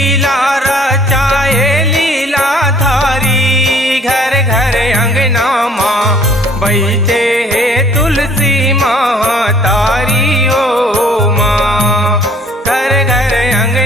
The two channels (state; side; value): normal; both; correlation 0.56